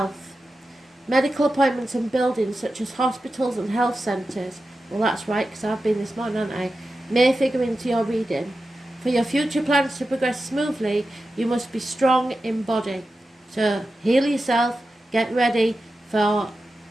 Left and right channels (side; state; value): both; normal; correlation 0.92